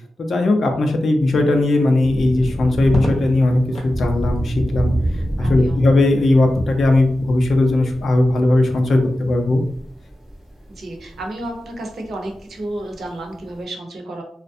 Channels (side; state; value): both; normal; correlation 0.93